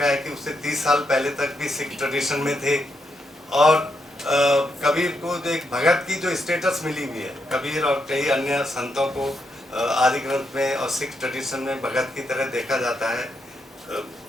है कि उससे 30 साल पहले तक भी सिख ट्रेडिशन में थे। और कबीर को जो एक भगत की जो स्टेटस मिली हुई है, कबीर और कई अन्य संतों को आदि ग्रंथ में और सिख ट्रेडिशन में भगत की तरह देखा जाता है।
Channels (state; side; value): normal; both; correlation 0.81